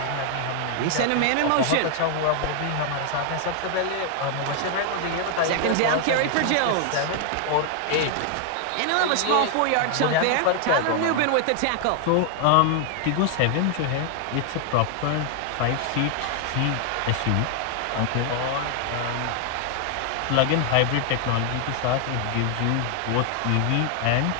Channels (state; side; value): different; both; correlation 0.00